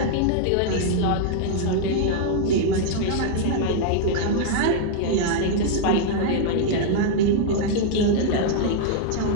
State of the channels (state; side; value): different; both; correlation -0.01